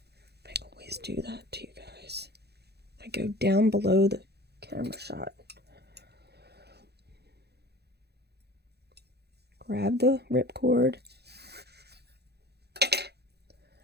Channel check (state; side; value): late; left; 0.48 ms